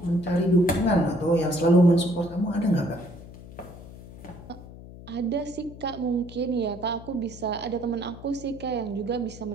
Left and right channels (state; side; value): noise; left; hum, 16 dB below the sound